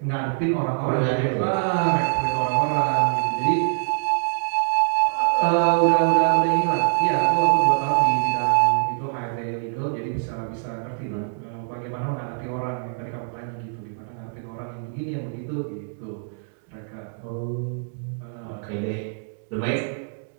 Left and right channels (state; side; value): silent; left; digital silence